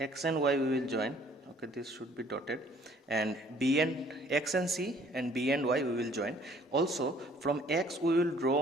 and Y, we will join. Okay, this should be dotted, and B and X and C and B and Y we will join. Also from X we will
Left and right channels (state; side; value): normal; both; correlation 0.58